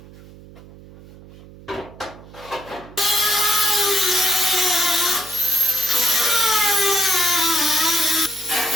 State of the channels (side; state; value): right; noise; hum, 20 dB below the sound